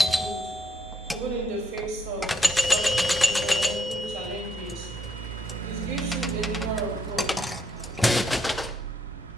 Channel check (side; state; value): both; normal; correlation 0.74